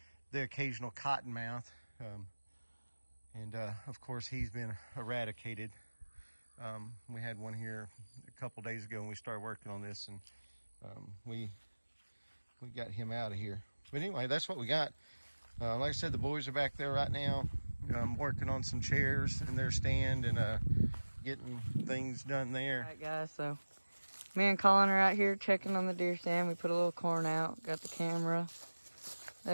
The occasional cottonmouth, and of course he's been eradicated. We had one here a couple days ago and we started working on this, and we got him out of here. But anyway, that's what we got. Like I said, the boys are back there right now. I'm working on some chairs in their stand and getting things done there. All right, guys, so me and Colin are out here checking on the deer stand. We put a little corn out, got the camera.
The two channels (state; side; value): inverted; both; correlation -1.00